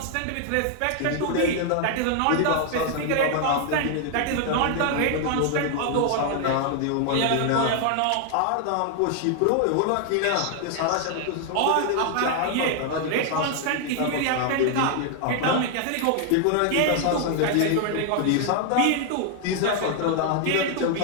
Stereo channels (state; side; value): different; both; correlation 0.00